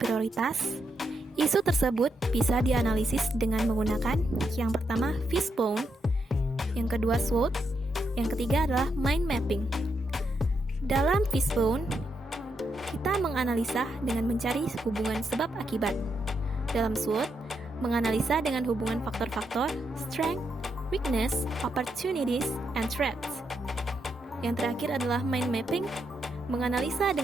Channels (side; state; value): both; normal; correlation 0.81